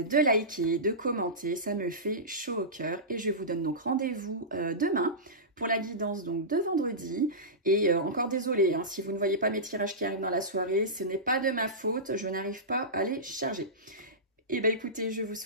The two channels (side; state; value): both; normal; correlation -0.18